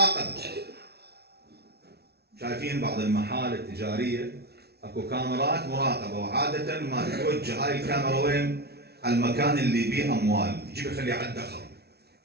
شايفين بعض المحال التجارية اكو كاميرات مراقبه، وعاده ما تتوجه هاي الكاميرا وين؟ على المكان اللي بيه اموال، يجيب يخليه على الدخل.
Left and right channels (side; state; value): left; late; 0.47 ms